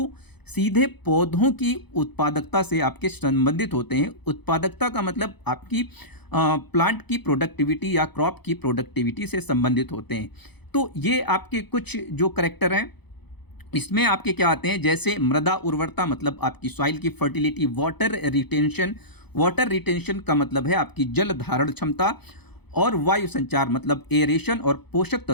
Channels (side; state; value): right; late; 0.98 ms